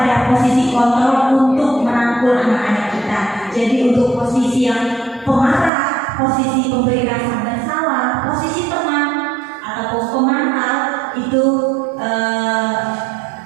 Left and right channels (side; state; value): left; drops out; at 5.7 s